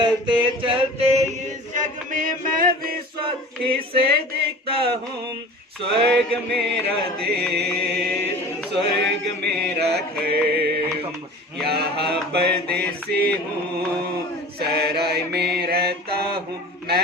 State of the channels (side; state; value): both; normal; correlation 0.39